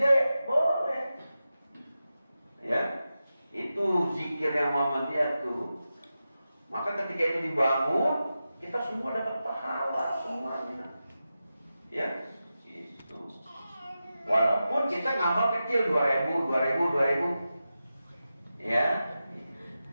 boleh. Ya, itu zikir yang Muhammadiyah tuh. Maka ketika itu dibangun, kita semua dapat pahala semuanya. Ya, itu. Walaupun kita ngamal kecil 2000. Ya.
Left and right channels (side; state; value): both; inverted; correlation -0.92